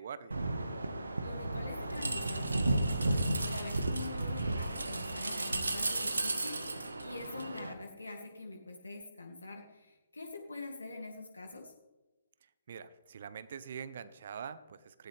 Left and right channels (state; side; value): inverted; both; correlation -0.87